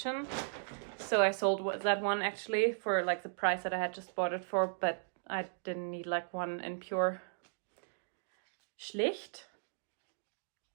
So I sold that one actually for like the price that I had just bought it for, but I didn't need like one in Pure. Schlicht,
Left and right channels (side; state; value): left; silent; digital silence